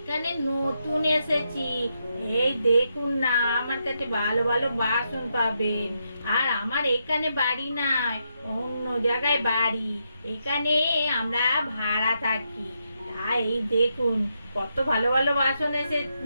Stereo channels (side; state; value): both; inverted; correlation -0.82